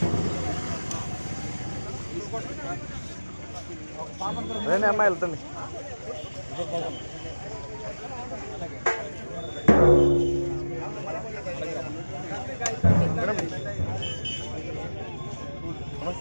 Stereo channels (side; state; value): both; inverted; correlation -1.00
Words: అదే అమ్మాయి వెళ్తుంది మేడం